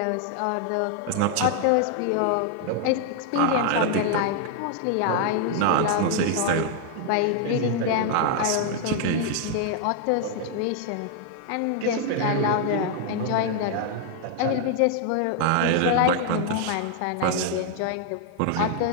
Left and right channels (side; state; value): both; different; correlation 0.00